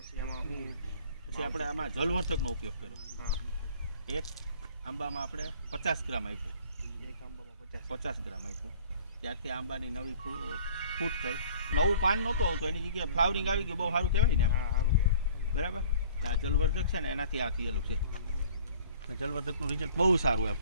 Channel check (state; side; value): inverted; both; correlation -0.50